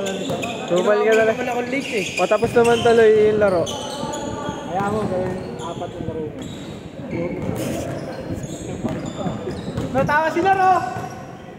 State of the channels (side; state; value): both; identical; correlation 1.00